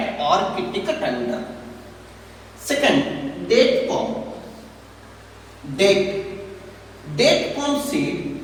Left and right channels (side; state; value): both; identical; correlation 1.00